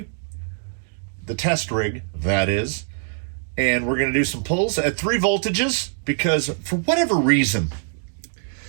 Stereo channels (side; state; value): left; silent; 63 dB below the other